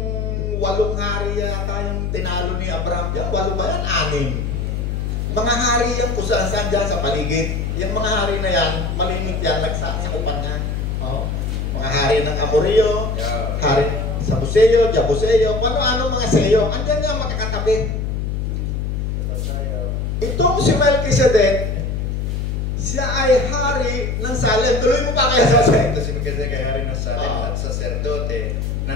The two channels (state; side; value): noise; left; hum, 1 dB below the sound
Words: hari yata yung tinalo ni Abraham dyan. 8 ba yan? 6. Mga hari yan kung saan dyan sa paligid. Yung mga hari na yan, malimit yan, nagsasakupan niya. Oh. Mga hari ng Amorio, hari sa Buseo, Jabuseo, ano mga Seo. Andyan nga makakatabi. Itong si Melchizedek, siya ay hari ng Salem. Tuloy mo pa kaya sa Salem? Ito si Melchizedek ay hari ng Salem at saserdote